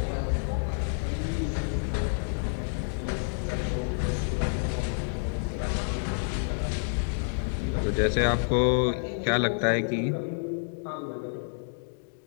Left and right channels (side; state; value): right; silent; digital silence